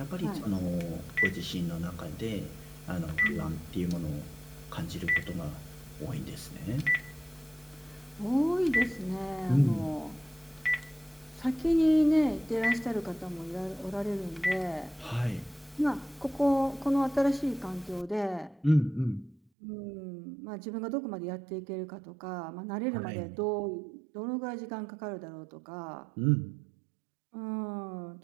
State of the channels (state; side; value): drops out; left; at 19.4 s